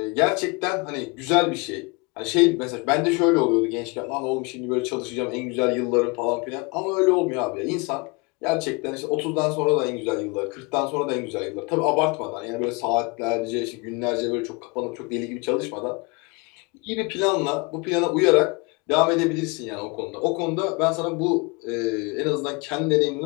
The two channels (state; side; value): quieter; right; 28.7 dB